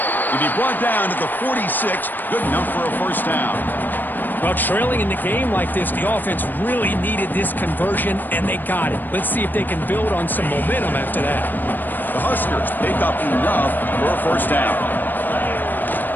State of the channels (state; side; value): late; right; 0.090 ms